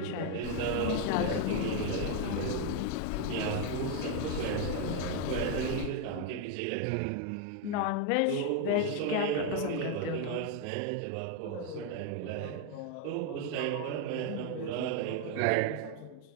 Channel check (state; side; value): different; both; correlation 0.01